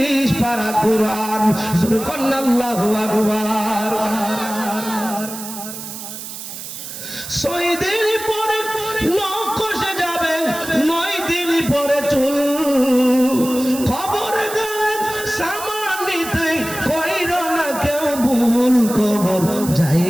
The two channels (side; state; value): right; noise; hiss, 10 dB below the sound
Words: পারা কোরআন। সুবহানাল্লাহু আকবার। 6 দিন পরে নখ কষে যাবে, 9 দিন পরে চুল। খবর গেলে সামান নিতে কইর না কেউ ভুল। কবর